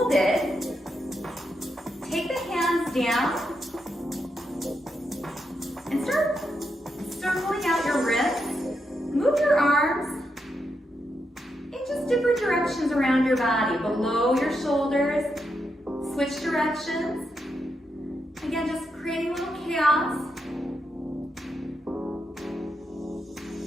it. Take the hands down and start circling out your wrists. Move your arms in just different directions around your body, below your shoulders. Switch directions. Again, just creating a little chaos.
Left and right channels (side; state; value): both; normal; correlation 0.83